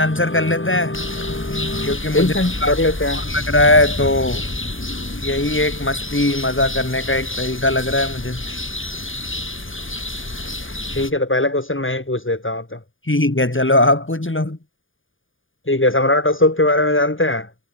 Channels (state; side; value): late; right; 0.58 ms